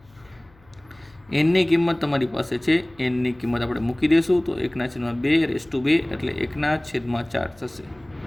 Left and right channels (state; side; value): noise; left; hum, 29 dB below the sound